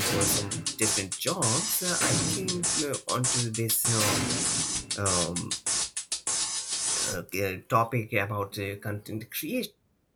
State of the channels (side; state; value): both; identical; correlation 1.00